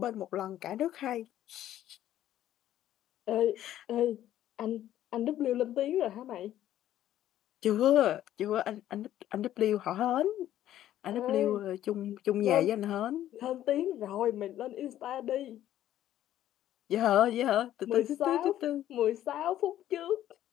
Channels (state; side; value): quieter; right; 12.4 dB